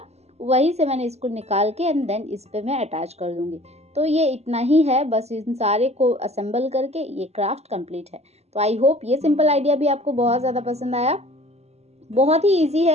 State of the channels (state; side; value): late; left; 0.31 ms